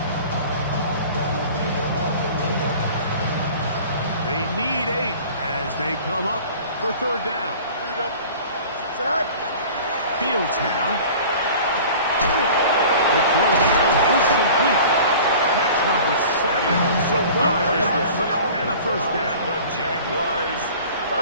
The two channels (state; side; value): inverted; both; correlation -0.43